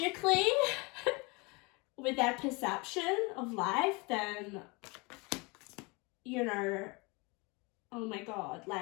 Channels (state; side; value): quieter; right; 27.5 dB